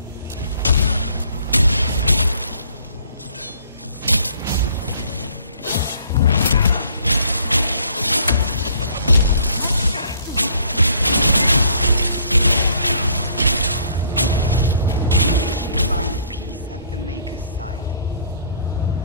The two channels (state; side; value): inverted; both; correlation -0.60